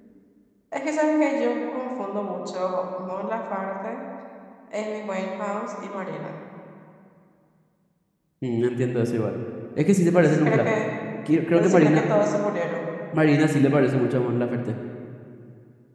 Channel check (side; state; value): both; identical; correlation 1.00